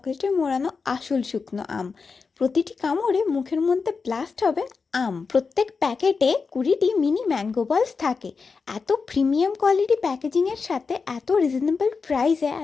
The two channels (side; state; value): right; quieter; 4.9 dB